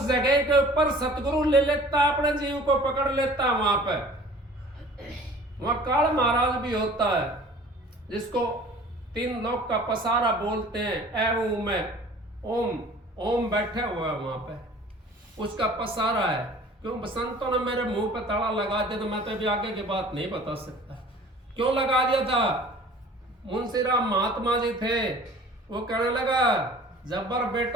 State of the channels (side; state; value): both; normal; correlation 0.47